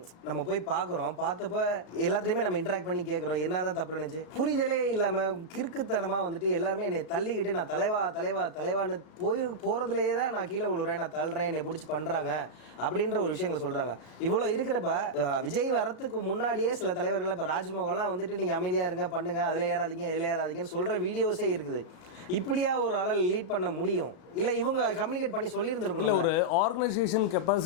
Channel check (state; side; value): late; right; 36 ms